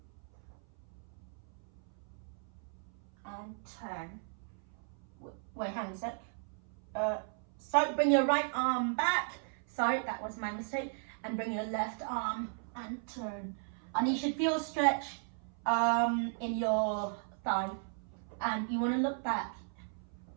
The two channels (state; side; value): silent; left; 54 dB below the other